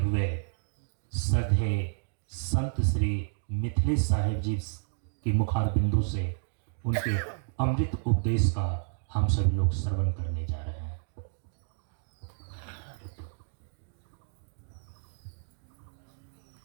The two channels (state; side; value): silent; left; digital silence